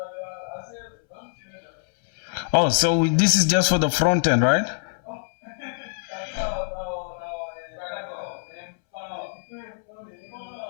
Oh, so this is just for the front end, right?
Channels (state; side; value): silent; right; 61 dB below the other